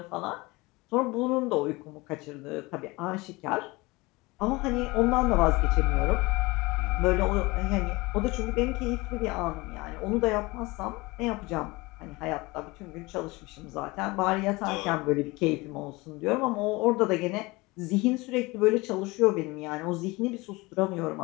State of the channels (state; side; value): quieter; right; 23.1 dB